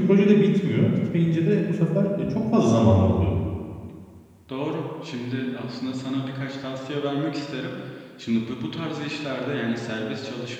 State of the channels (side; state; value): both; identical; correlation 1.00